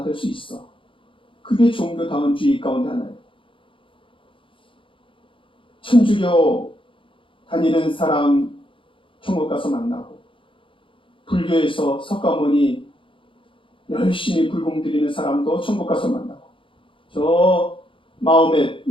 수 있어. 그게 종교다원주의 가운데 하나예요. 천주교 다니는 사람 천국 가서 만나고, 불교에서 석가모니 열심히 불공 드리는 사람도 천국 가서 만나고, 저 마음에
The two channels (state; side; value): late; right; 0.25 ms